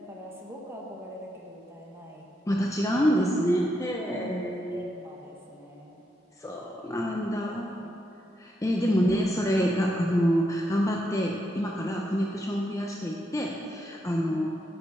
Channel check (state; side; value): normal; both; correlation 0.81